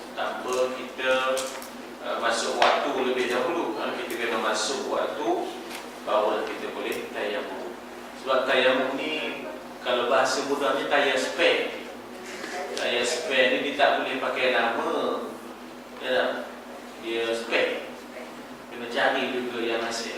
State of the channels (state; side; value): identical; both; correlation 1.00